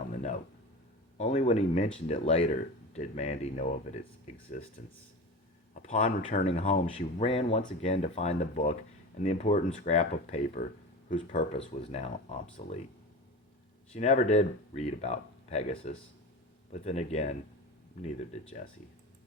the note. Only when he mentioned it later did Mandy know of its existence. Upon returning home, she ran once again to find the book and the important scrap of paper whose purpose was now obsolete. She never did read about Pegasus, but then again, neither did Jesse.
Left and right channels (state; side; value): normal; both; correlation 0.29